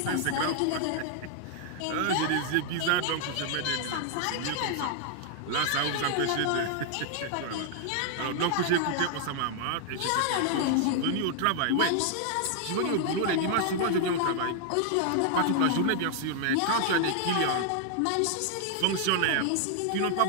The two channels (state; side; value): different; both; correlation 0.00